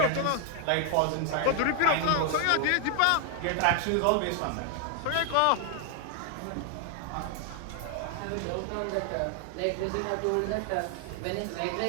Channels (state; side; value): different; both; correlation 0.00